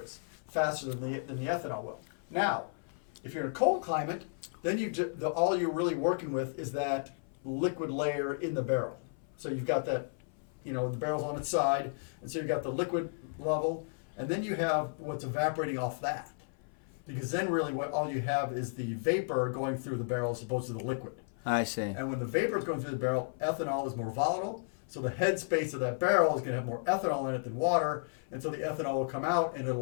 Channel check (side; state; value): right; silent; 55 dB below the other